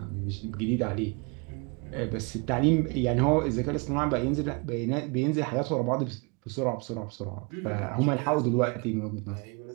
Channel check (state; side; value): quieter; left; 31.6 dB